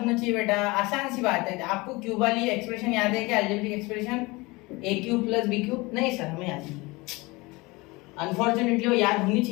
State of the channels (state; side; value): quieter; right; 23.7 dB